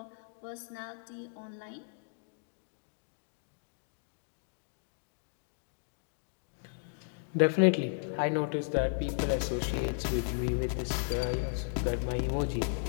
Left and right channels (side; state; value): right; silent; digital silence